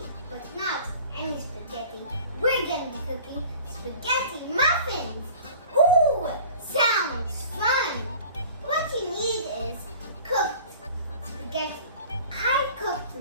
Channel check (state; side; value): inverted; both; correlation -0.44